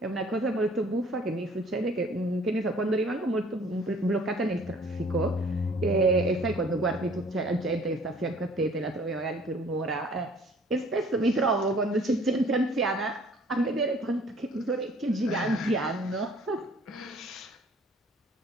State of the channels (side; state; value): both; normal; correlation 0.55